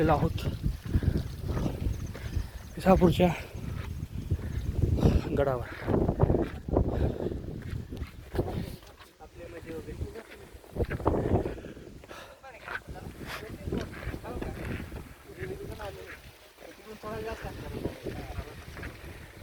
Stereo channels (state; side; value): identical; both; correlation 1.00